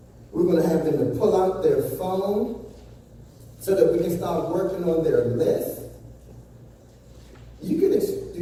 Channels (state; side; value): identical; both; correlation 1.00